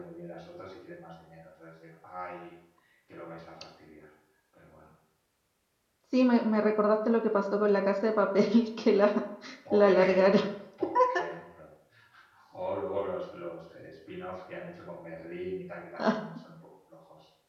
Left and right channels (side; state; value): both; identical; correlation 1.00